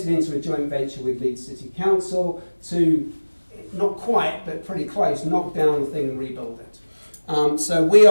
into a joint venture with Leeds City Council to, not quite, but pretty close, knock down the thing and rebuild it. So we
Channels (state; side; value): inverted; both; correlation -1.00